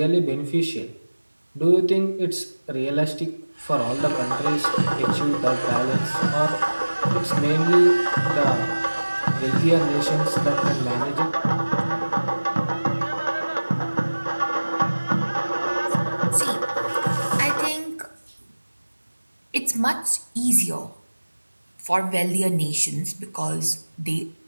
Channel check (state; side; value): inverted; both; correlation -1.00